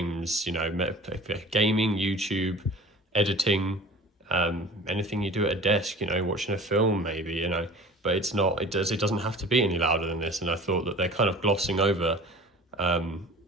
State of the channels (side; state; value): both; normal; correlation 0.42